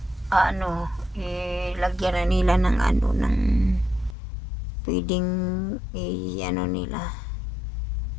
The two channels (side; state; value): right; drops out; at 4.2 s